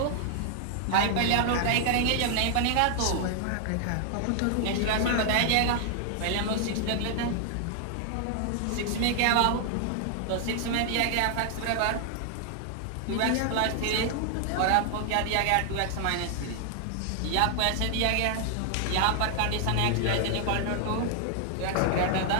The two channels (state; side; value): different; both; correlation 0.00